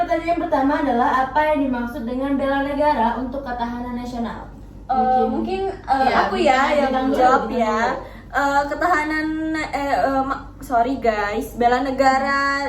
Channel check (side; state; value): both; identical; correlation 1.00